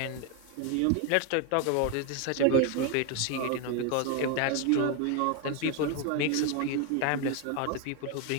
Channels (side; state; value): both; different; correlation 0.01